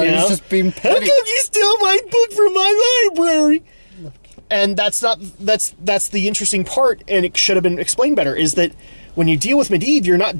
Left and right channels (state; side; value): inverted; both; correlation -1.00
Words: he was just being petty. How come you steal my book from my library? And that's the interesting part, and it should have been explained better, is that when you deal with Medivh, you're not